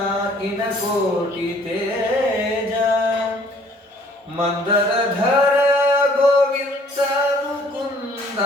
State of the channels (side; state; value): both; normal; correlation 0.58